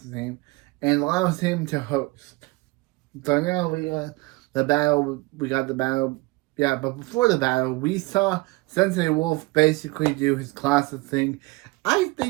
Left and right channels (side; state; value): left; quieter; 23.4 dB